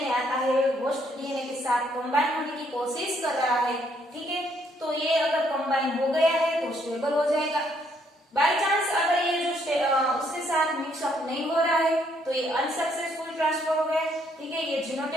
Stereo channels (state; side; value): normal; both; correlation 0.70